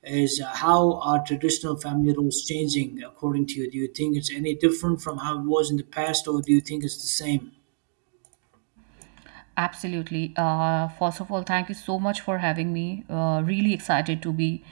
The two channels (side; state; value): left; silent; digital silence